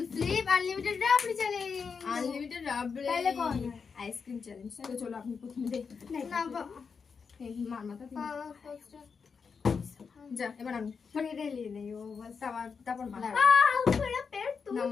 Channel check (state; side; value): quieter; right; 5.7 dB